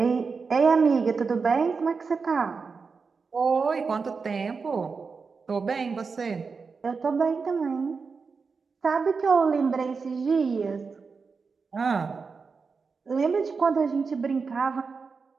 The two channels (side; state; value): left; quieter; 5.0 dB